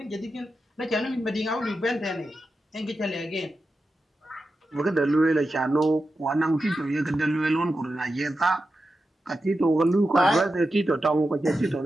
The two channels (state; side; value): normal; both; correlation 0.90